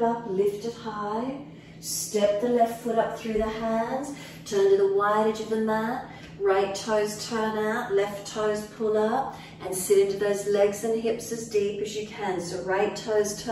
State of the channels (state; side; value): identical; both; correlation 1.00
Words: up, lift it high. Step the left foot up through the hands. Turn to the wide edge of the mat. Right toes turn out, left toes pull up. And sit into those legs and hips as deep as you can. So right toes